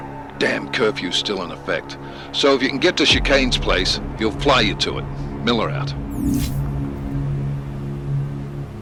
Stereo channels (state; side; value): identical; both; correlation 1.00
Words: Damn curfew's still in effect. So if you can get to Chicane's place, he'll fly you to it. Miller out.